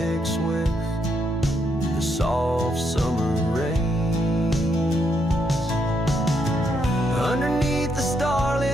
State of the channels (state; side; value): normal; both; correlation 0.77